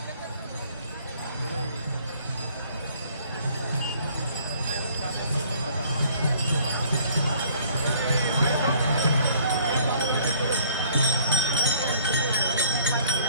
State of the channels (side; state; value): both; inverted; correlation -0.57